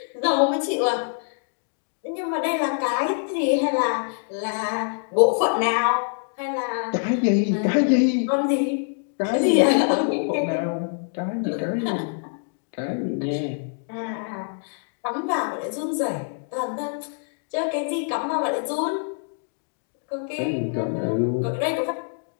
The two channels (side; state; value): right; silent; 61 dB below the other